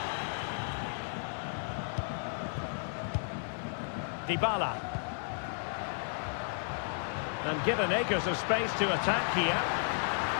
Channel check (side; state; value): right; silent; 55 dB below the other